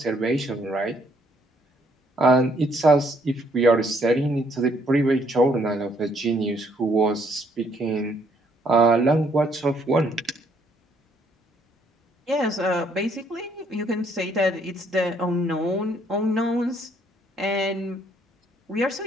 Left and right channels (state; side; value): normal; both; correlation 0.67